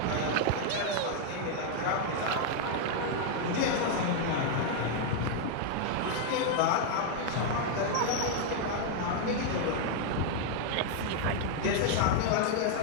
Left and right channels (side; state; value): both; different; correlation 0.00